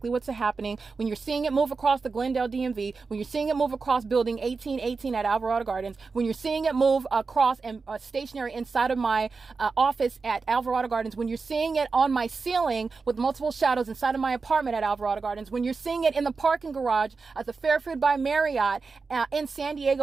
what's happening. When you're seeing it move across the Glendale DMV, when you're seeing it move across building 1818 at Alvarado Gardens, when you're seeing it move across and stationary inside of my office at Alvarado Gardens, when you're seeing it on my ceiling with multiple shadows inside of my apartment at Alvarado Gardens, when you're seeing it in the parking garage at the Fairfield by Marriott in San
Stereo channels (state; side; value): quieter; left; 4.5 dB